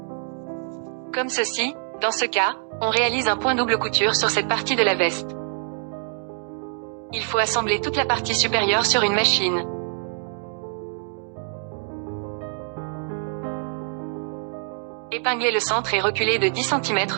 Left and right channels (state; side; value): silent; left; 62 dB below the other